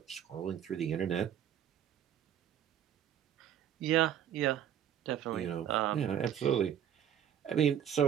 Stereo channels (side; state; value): left; quieter; 9.9 dB